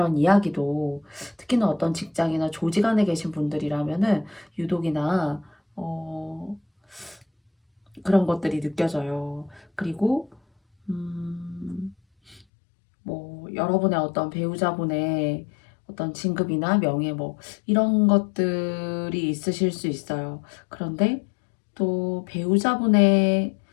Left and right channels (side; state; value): right; drops out; at 12.5 s